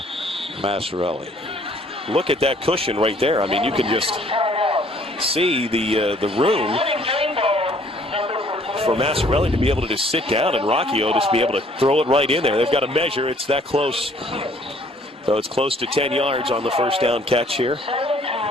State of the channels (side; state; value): both; normal; correlation 0.60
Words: Massarelli. Look at that cushion right there. I mean, you can just see the room for Massarelli to be able to just sit down and Rocchio just be able to throw it right in there. They've got to measure. It's that close. So it's close to 10 yards on the 1st down catch here.